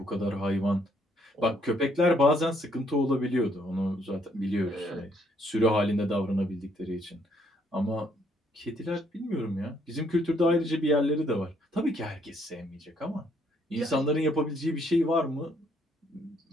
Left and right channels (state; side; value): normal; both; correlation 0.69